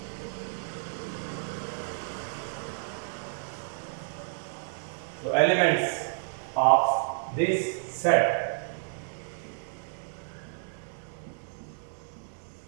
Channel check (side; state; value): left; silent; digital silence